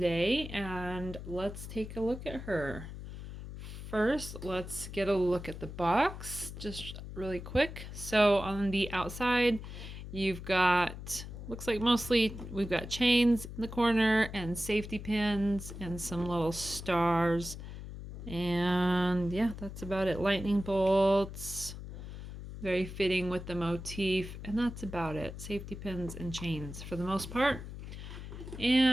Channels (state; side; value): noise; left; hum, 10 dB below the sound